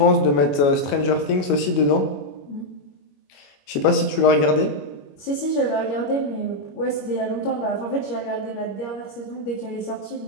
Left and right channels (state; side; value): late; right; 21 ms